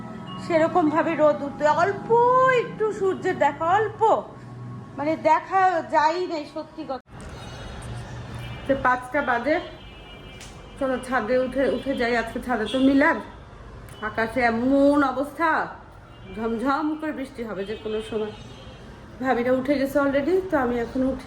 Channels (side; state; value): both; identical; correlation 1.00